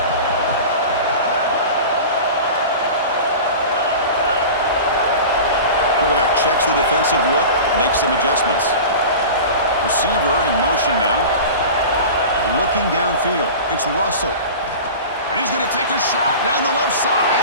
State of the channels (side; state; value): both; inverted; correlation -0.34